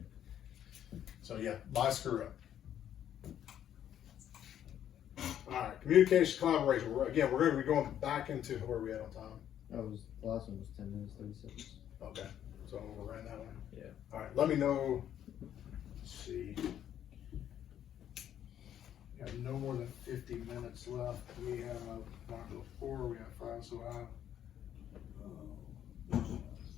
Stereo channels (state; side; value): quieter; right; 10.4 dB